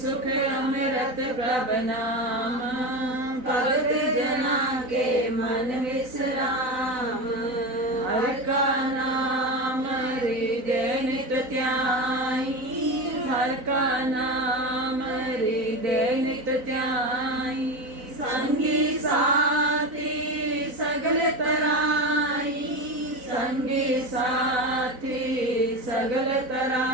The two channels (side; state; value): left; late; 4.0 ms